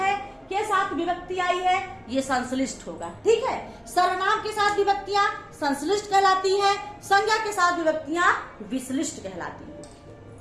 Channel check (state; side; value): identical; both; correlation 1.00